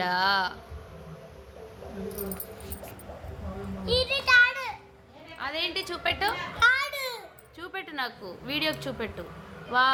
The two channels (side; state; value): both; identical; correlation 1.00